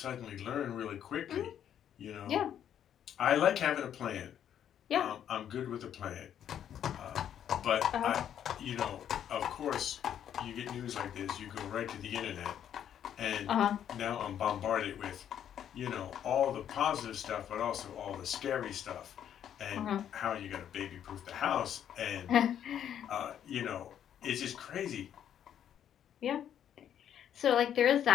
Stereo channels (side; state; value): right; quieter; 9.7 dB